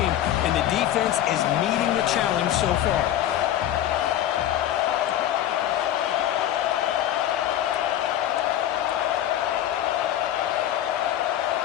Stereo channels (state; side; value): quieter; right; 11.9 dB